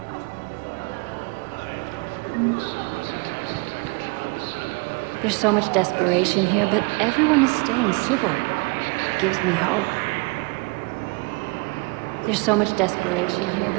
There's so much desperation here, but everyone is staying civil. It gives me hope. There's so much desperation here,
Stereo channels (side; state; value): left; quieter; 29.8 dB